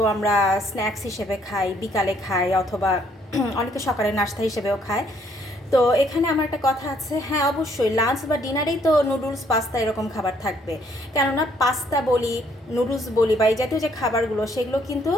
আমরা স্ন্যাক্স হিসেবে খাই, বিকালে খাই, অথবা অনেকে সকালে নাস্তা হিসেবেও খায়। তো এখানে আমার একটা কথা আছে, হ্যাঁ অবশ্যই লাঞ্চ বা ডিনারেই তো নুডলস পাস্তা এরকম খাবার থাকবে। কেননা পাস্তা বলি, নুডলস বলি বা এই জাতীয় যে খাবারগুলো, সেগুলো কিন্তু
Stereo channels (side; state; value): both; normal; correlation 0.66